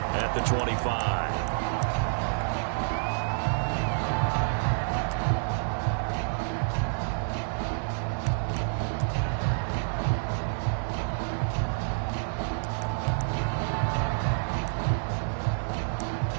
at the 25.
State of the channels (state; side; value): silent; left; digital silence